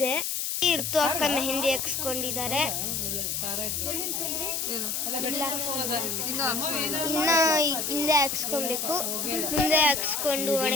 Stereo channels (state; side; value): noise; left; hiss, 1 dB below the sound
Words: ಇರ್ತು ಅಕ್ಕ ಮೆಹಂದಿ ಹಾಕ್ಸ್ಕೊಂಡಿದ್ದಾರೆ. ಇನ್ನ ಹಿಂದೆ ಹಾಕ್ಸ್ಕೊಬೇಕು. ಮುಂದೆ ಹಾಕ್ಸ್ಕೊಂಡು